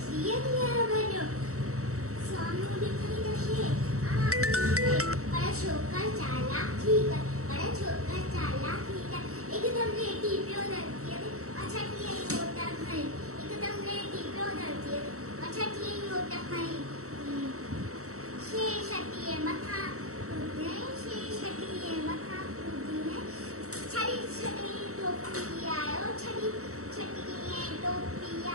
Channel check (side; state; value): left; late; 0.64 ms